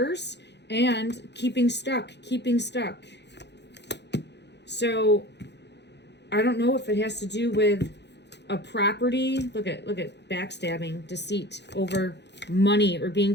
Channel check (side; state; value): right; late; 0.50 ms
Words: And keeping stuck. So, I don't know if it has to do with a property. Look at backstabbing, deceit over money or being